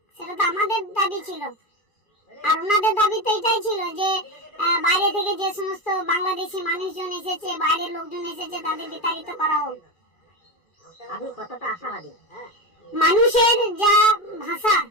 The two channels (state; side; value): late; right; 2.4 ms